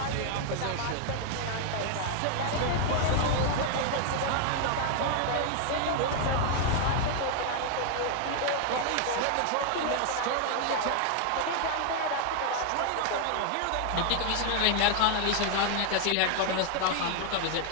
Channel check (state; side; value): different; both; correlation 0.00